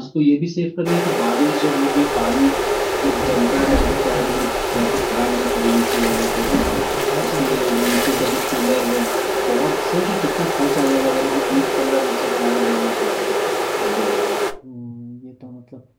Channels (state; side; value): identical; both; correlation 1.00